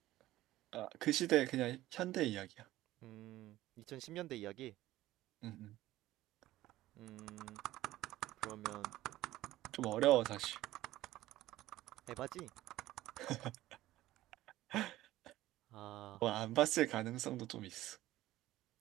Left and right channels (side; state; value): left; quieter; 15.8 dB